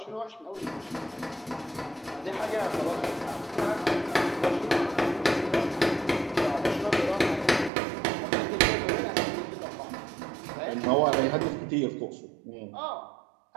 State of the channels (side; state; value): left; drops out; at 7.7 s